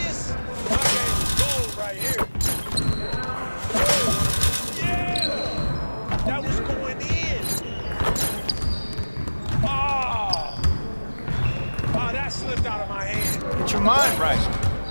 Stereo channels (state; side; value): inverted; both; correlation -1.00